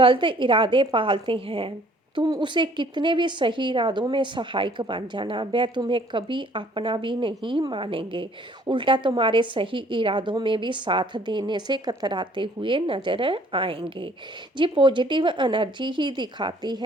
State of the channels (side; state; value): both; normal; correlation 0.58